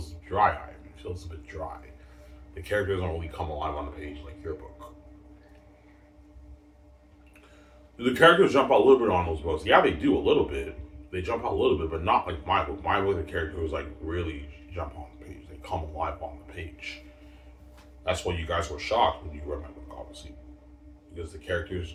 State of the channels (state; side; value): identical; both; correlation 1.00